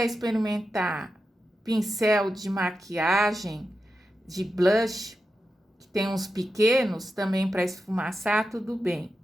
experimentar pincel de maquiagem, de blush, que tem uns pequenos também para esfumaçar, tudo bem.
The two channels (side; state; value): both; normal; correlation 0.89